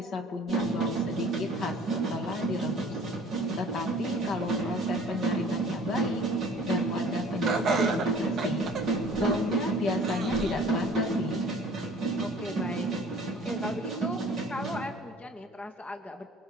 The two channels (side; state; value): both; normal; correlation 0.49